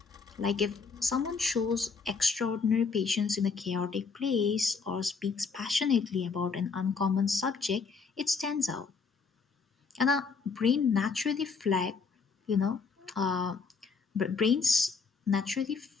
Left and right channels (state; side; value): quieter; right; 5.0 dB